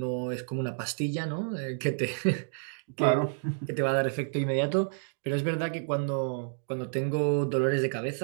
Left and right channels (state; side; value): silent; left; digital silence